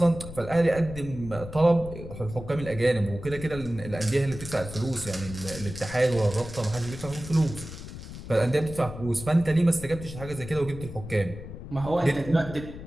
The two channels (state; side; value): noise; left; rumble, 11 dB below the sound